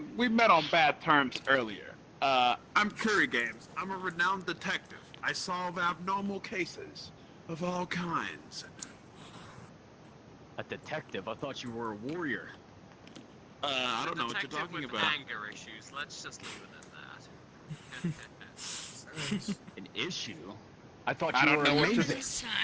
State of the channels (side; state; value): both; identical; correlation 1.00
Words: we met on bad terms earlier. I'm Curry Games. I'm a renowned detective. I solve abnormal cases of all kinds. A detective? I thought you were a warrior. I don't know what you're talking about. Anger issues. Let's just leave it at that. An issue? I thought I you don't were know what amazing.